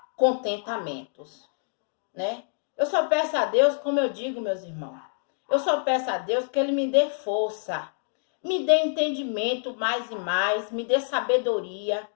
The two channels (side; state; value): right; silent; digital silence